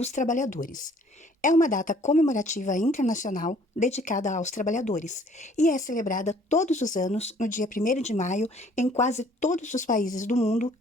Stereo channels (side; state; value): both; normal; correlation 0.58